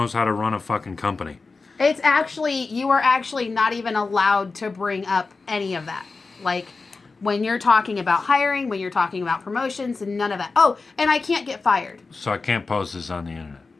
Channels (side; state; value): right; quieter; 4.1 dB